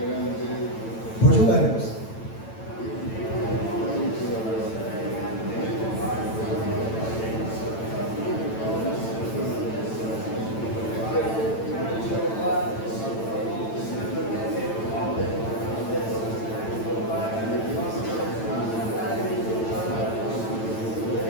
Pode orar, irmãos.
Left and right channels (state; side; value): late; right; 9.0 ms